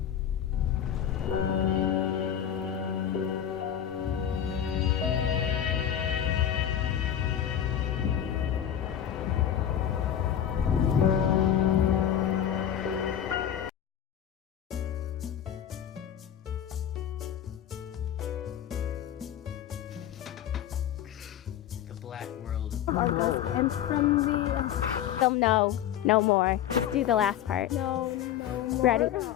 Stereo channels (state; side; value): quieter; right; 10.1 dB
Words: Black world. And from the... Film no more. Let's do the last part. No more. Ready?